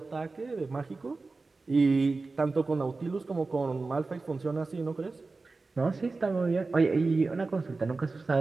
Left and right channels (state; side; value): quieter; left; 3.8 dB